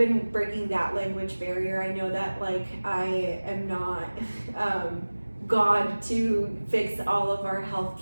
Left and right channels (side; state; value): both; inverted; correlation -1.00